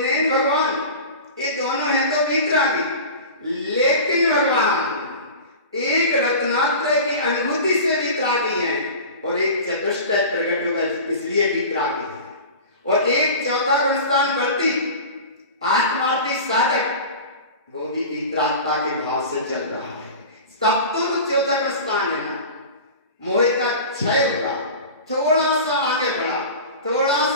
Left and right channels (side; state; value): both; inverted; correlation -0.34